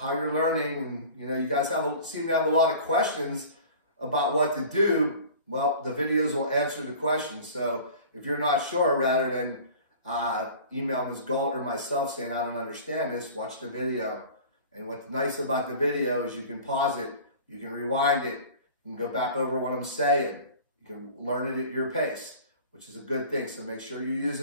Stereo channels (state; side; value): inverted; both; correlation -0.42